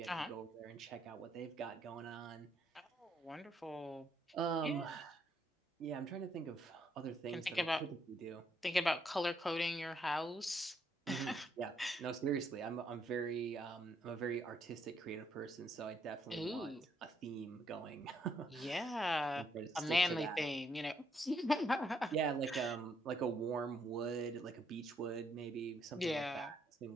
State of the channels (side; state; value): both; normal; correlation 0.73